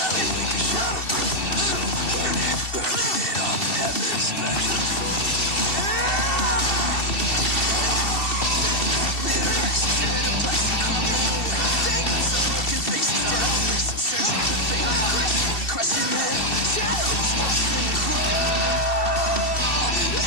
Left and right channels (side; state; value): right; late; 2.7 ms